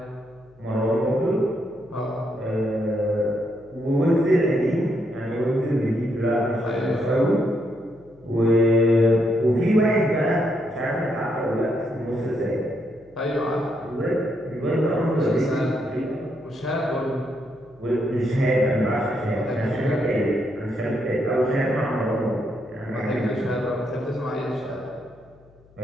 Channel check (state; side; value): noise; left; hum, 28 dB below the sound